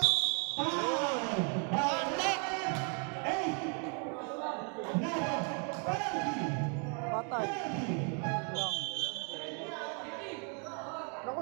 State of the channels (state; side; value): quieter; left; 39.3 dB